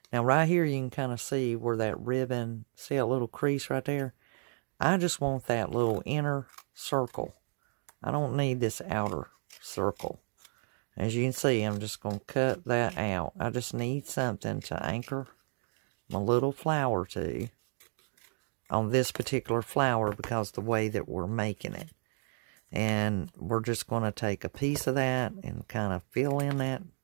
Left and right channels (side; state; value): left; silent; digital silence